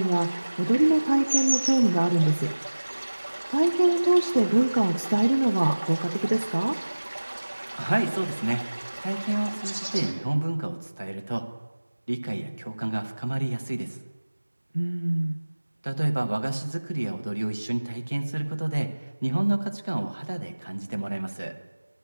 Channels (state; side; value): inverted; both; correlation -1.00